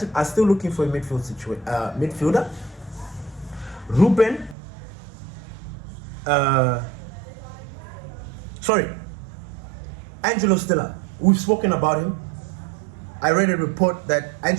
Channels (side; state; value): left; drops out; at 4.5 s